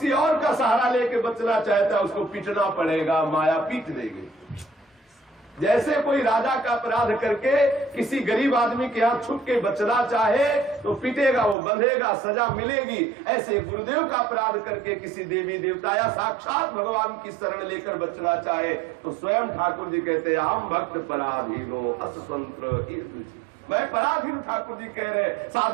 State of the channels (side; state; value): left; drops out; at 11.6 s